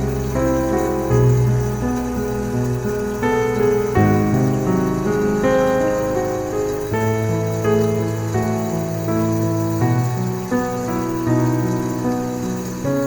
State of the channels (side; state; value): both; identical; correlation 1.00